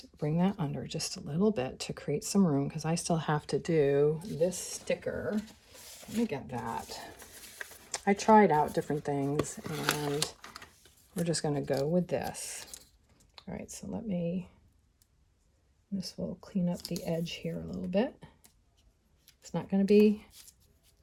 bring that under just a little bit to create some room, because I still have to do this sticker. Let me get that. I tried out different things, and we're just going to go with this. All right, so this will clean up the edge here a little bit. It's not going to be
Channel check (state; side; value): identical; both; correlation 1.00